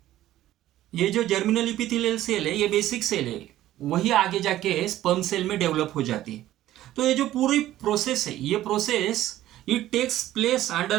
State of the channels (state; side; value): quieter; left; 13.9 dB